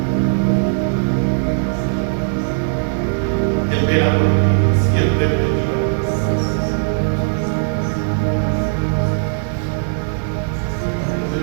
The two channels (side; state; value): left; silent; digital silence